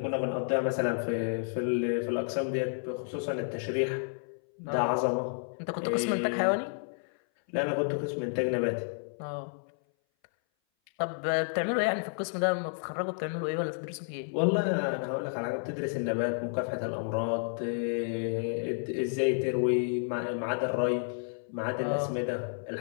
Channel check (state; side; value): silent; right; 57 dB below the other